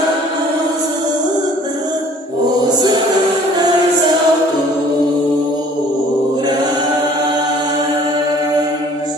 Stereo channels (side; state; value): both; normal; correlation 0.53